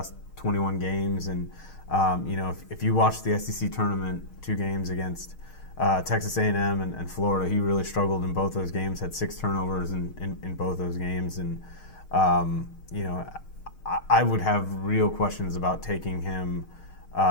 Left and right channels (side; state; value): right; late; 6.5 ms